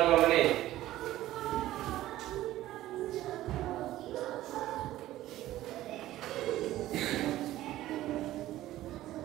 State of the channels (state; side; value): quieter; left; 14.9 dB